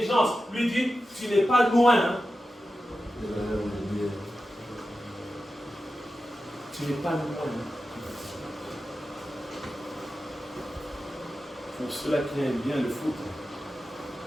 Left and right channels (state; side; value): normal; both; correlation 0.92